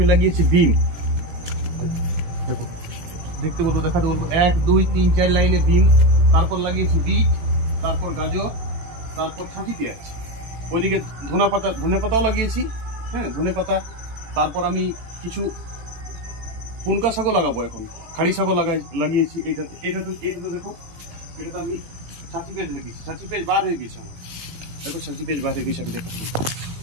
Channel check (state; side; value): late; left; 18 ms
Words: লাগিয়েছি বিম। দেখো দেখতে বলবো, দেখাতে বলবো, 1 2 3 4 লাইনে বিম। তারপর লাগিয়েছি বিট, তারপর গাজর, তারপর ছাঁচি পেঁয়াজ। ওইদিকে ধনে পাতাও লাগিয়েছি, হ্যাঁ ধনে পাতা। তারপর আমি কিছু পুনকা শাকও লাগাবো, এখন খাড়ি শাকও লাগিয়েছি। এটাতে দেখো, এটাতে আমি ছাঁচি পেঁয়াজ লাগিয়েছি। ছাঁচি পেঁয়াজ বার হয়ে গেছে আমার, দেখো ছাঁচি পেঁয়াজ বার হয়ে গেছে। আমি দেখো